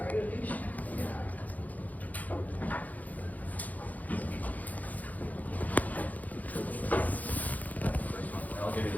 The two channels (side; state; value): right; late; 0.079 ms